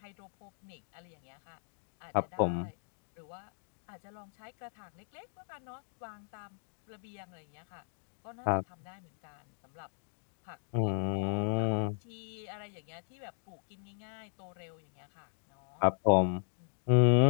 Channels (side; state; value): right; silent; digital silence